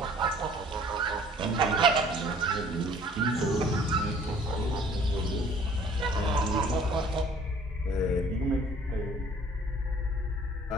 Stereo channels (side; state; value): both; normal; correlation 0.54